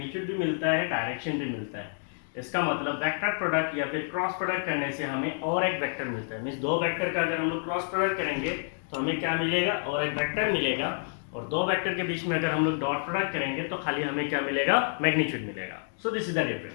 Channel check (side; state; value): right; silent; digital silence